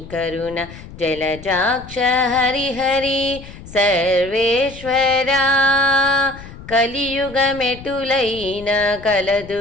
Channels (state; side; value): noise; left; rumble, 16 dB below the sound